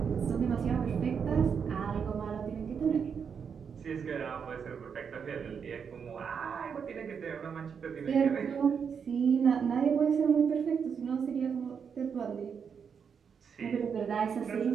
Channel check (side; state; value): left; quieter; 6.7 dB